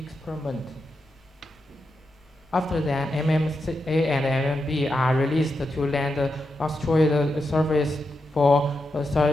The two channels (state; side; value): normal; both; correlation 0.86